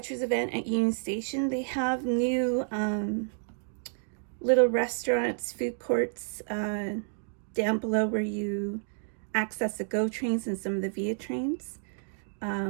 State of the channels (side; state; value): left; silent; digital silence